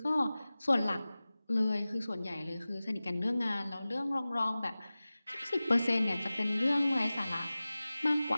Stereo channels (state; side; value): inverted; both; correlation -0.97